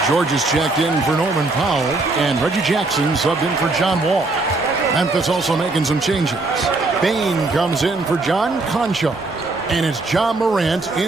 George is checked in for Norman Powell. And Reggie Jackson subbed in for John Wall. Memphis also making some changes. Bain comes in for John Concho. And it's John Morant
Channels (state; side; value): quieter; left; 3.3 dB